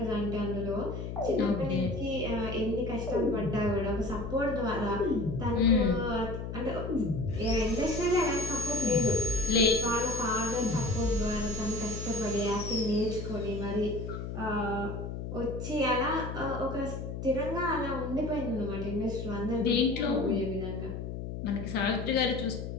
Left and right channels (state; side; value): noise; left; hum, 6 dB below the sound